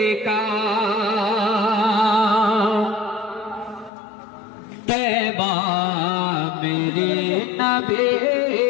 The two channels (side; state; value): right; drops out; at 3.9 s